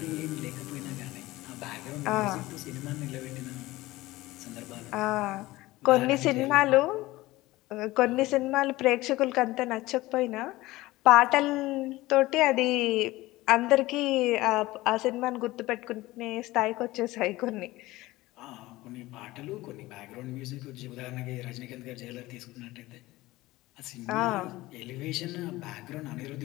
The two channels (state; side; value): quieter; right; 18.7 dB